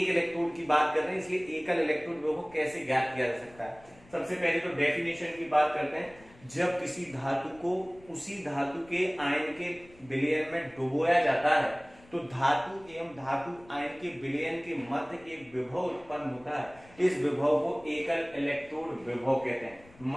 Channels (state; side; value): noise; left; rumble, 25 dB below the sound